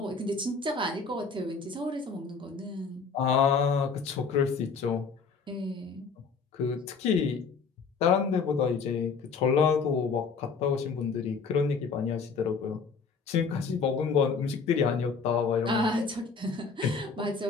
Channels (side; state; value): right; quieter; 5.1 dB